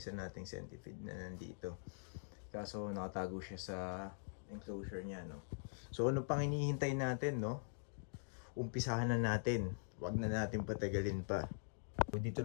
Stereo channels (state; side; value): silent; right; digital silence